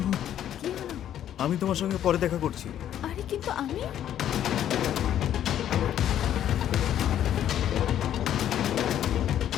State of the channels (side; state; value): right; quieter; 10.8 dB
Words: কি হলো? আমি তোমার সঙ্গে পরে দেখা করছি। আরে কিন্তু আমি